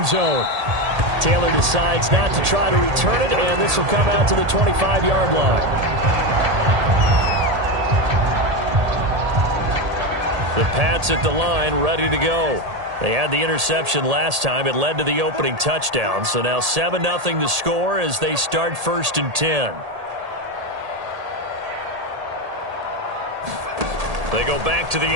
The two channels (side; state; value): left; late; 1.8 ms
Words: zone. Taylor decides not to try to return it, and this will come out to the 25-yard line. The Pats at the line, ready to go. They had the interception last time. It led to the opening touchdown. So now 7-0 the score as they start 1st and 10. They go back to the